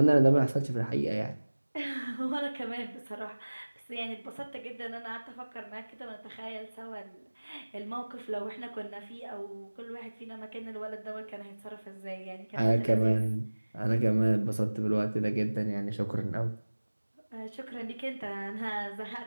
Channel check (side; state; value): both; inverted; correlation -1.00